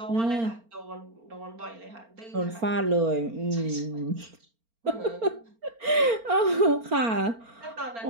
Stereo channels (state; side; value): late; left; 4.4 ms